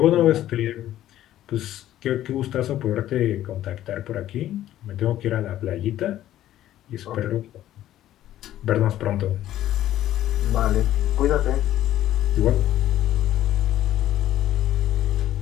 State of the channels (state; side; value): quieter; right; 13.0 dB